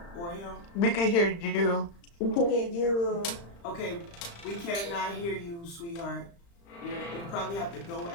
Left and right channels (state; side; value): late; right; 35 ms